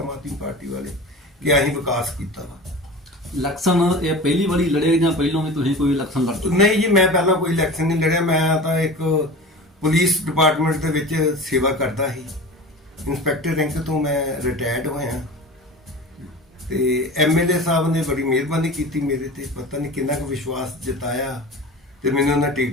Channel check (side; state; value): both; normal; correlation 0.34